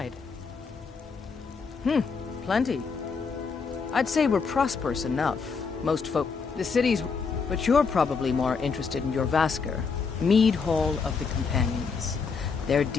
Plenty. I'd say we're prosperous enough. Most folk... The city's... But you're probably more interested in your Vasker, Mead Hall of the Companions. Their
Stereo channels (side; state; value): right; quieter; 5.2 dB